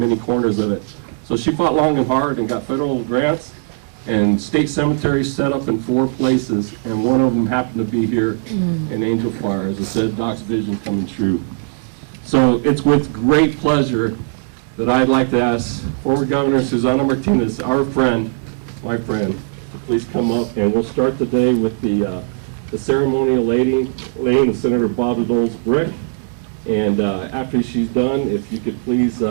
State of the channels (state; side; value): silent; left; digital silence